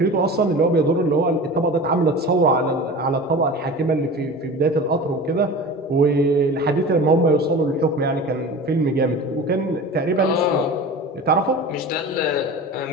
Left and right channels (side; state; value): both; normal; correlation 0.35